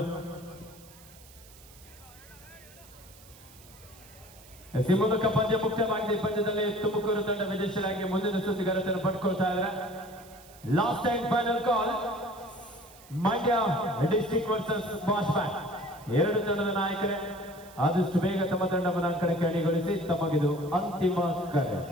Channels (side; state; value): right; noise; hiss, 22 dB below the sound